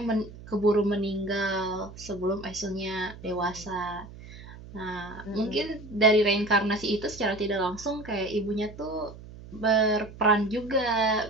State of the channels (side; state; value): right; noise; hum, 16 dB below the sound